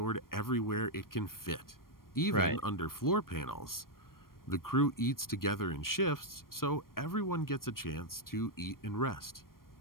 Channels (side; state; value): right; late; 0.92 ms